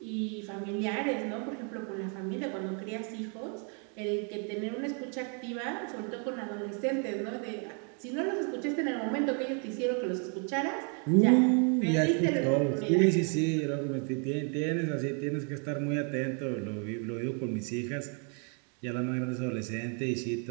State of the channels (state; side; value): quieter; left; 39.8 dB